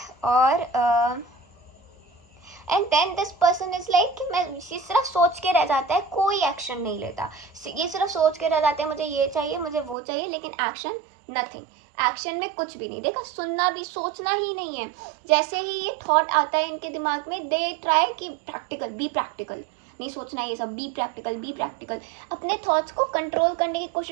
और and then this person is like कि मैं ये सिर्फ सोच के रह जाता है, कोई एक्शन नहीं लेता, ये सिर्फ सोच के रह जाते हैं मुझे ये चाहिए मुझे वो चाहिए, लेकिन एक्शन नथिंग। एक्शन में कुछ भी नहीं। देखा, सुनना भी, सोचना ही नहीं है। जैसे ही ये थॉट आता है इनके दिमाग में, दे ट्राई कि प्रैक्टिकल, बी प्रैक्टिकल, नहीं सोचना ये सब, बी प्रैक्टिकल, बी प्रैक्टिकल। अपने थॉट्स को कंट्रोल करने की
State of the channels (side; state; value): left; drops out; at 10.0 s